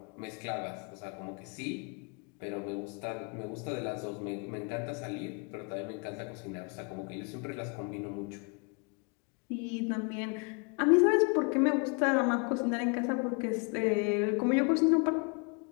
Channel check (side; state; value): right; quieter; 34.2 dB